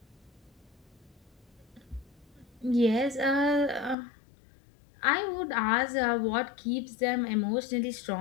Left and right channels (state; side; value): drops out; right; at 4.0 s